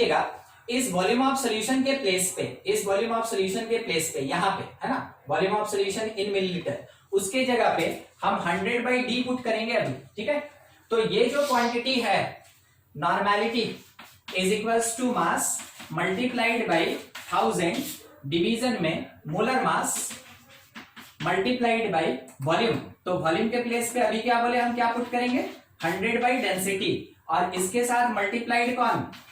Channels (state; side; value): identical; both; correlation 1.00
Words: इस वॉल्यूम ऑफ सॉल्यूशन के प्लेस पे, इस वॉल्यूम ऑफ सॉल्यूशन के प्लेस पे, यहाँ पे है ना, volume of solution in millilitre, उसके जगह पे हम 100/d पुट करेंगे अभी, ठीक है। तो ये जो क्वांटिटी है normality is equals to mass multiplied by 1000 division में molar mass multiplied by volume. तो वॉल्यूम के प्लेस पे अभी क्या बोले हम, क्या पुट करेंगे 100/डेंसिटी और इसके साथ मल्टीप्लाइड कौन,